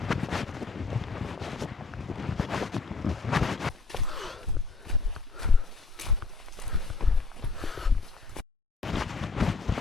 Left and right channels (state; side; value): quieter; right; 4.2 dB